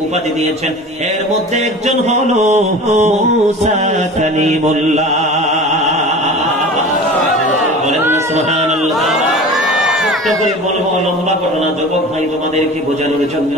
উপাধি দিয়েছেন। এর মধ্যে একজন হলো মুসা কালিমুল্লাহ। বলেন না সুবহানাল্লাহ। করে বলবো লম্বা ঘটনা, যুবক ভাই তোমাদেরকে বোঝানোর জন্য।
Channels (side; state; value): both; normal; correlation 0.37